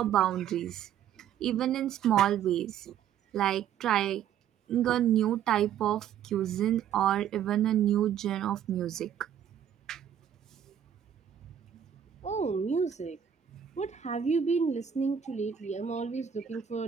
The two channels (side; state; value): left; quieter; 9.3 dB